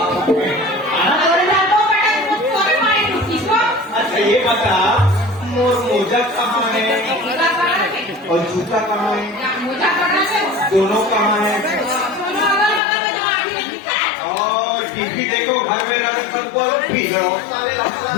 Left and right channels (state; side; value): drops out; right; at 12.8 s